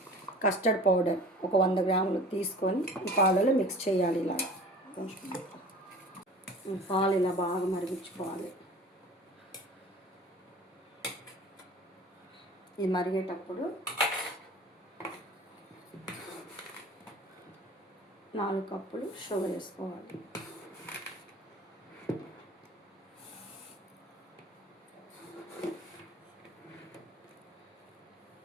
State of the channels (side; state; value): both; normal; correlation 0.43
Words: కస్టర్డ్ పౌడర్ ఒక 100 గ్రాములు తీసుకొని ఈ పాలలో మిక్స్ చేయాలి. ఇలా కొంచెం పాలు ఇలా బాగా మరిగించుకోవాలి. ఇది మరిగేటప్పుడు 4 కప్పులు షుగర్ వేసుకోవాలి.